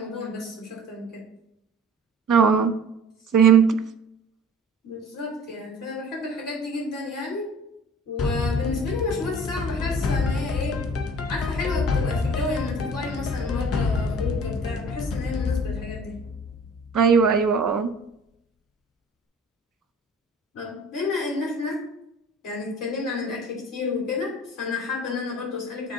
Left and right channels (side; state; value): both; normal; correlation 0.46